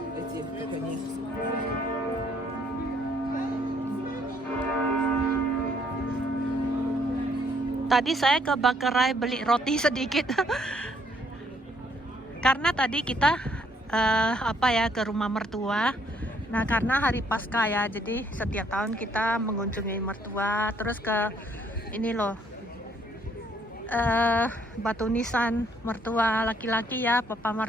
Tadi saya ke Bakerai beli roti sedikit. Karena tadi kita ke rumah mertua. Nah karena hari Paskah ya, jadi setiap tahun kita mengunjungi mertua. Terus ke ini loh, batu nisan mertua laki-laki ya, papa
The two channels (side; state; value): both; normal; correlation 0.67